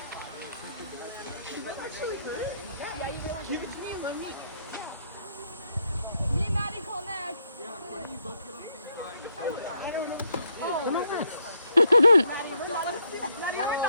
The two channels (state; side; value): inverted; both; correlation -0.75